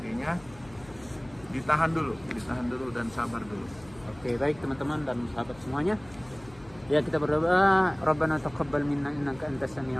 ditahan dulu dan sabar dulu. Oke, baik teman-teman dan sahabat semuanya. Ya, kita berdoa, Rabbana taqabbal minna innaka antas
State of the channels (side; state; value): left; noise; hum, 23 dB below the sound